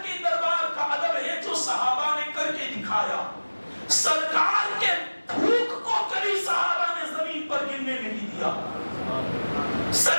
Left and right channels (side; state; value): both; inverted; correlation -1.00